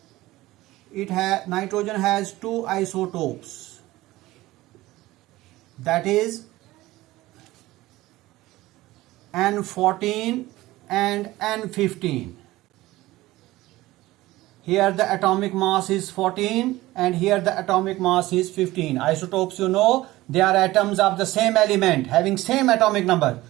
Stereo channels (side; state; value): left; quieter; 17.8 dB